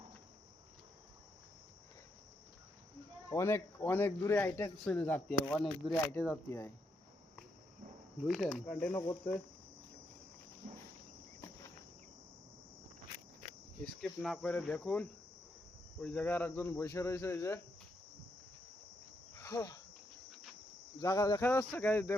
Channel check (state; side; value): normal; both; correlation 0.79